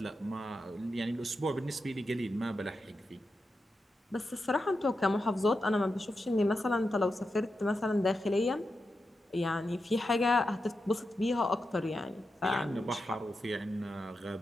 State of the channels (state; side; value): normal; both; correlation 0.89